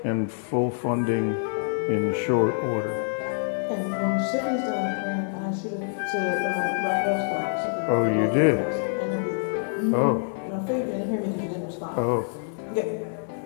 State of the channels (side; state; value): right; silent; 58 dB below the other